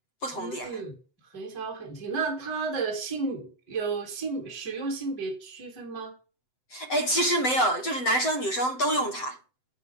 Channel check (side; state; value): right; late; 7.8 ms